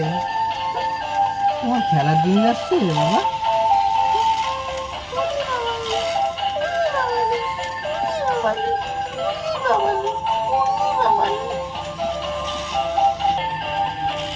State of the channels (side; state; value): both; identical; correlation 1.00